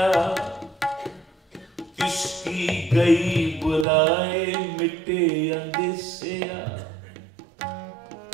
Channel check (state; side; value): drops out; left; at 3.9 s